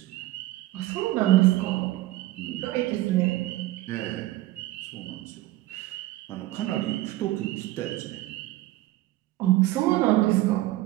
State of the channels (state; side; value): quieter; left; 16.7 dB